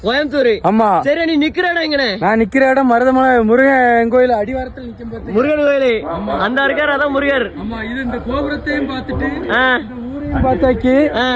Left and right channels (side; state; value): both; identical; correlation 1.00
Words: கோயம்புத்தூர், ஆமா. சரி, நீ நிக்கிற இடம் எங்கனே? நான் நிக்கிற இடம் மருதமலை முருகன் கோயில் அடிவாரத்தில் நிக்கும் பாத்து. முருகன் கோயில் அந்த இருக்காரு, அதான் முருகர். ஆமா, இது இந்த கோபுரத்தையும் பாத்துட்டு பார்த்தாக்கி